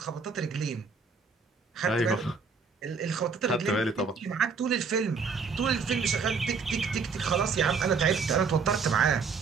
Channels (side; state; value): left; quieter; 5.1 dB